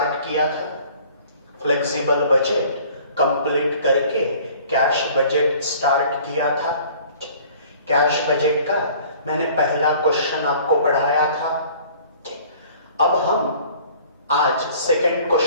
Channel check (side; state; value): both; inverted; correlation -0.51